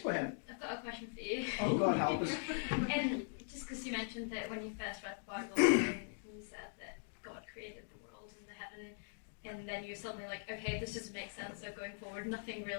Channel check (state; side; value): silent; right; digital silence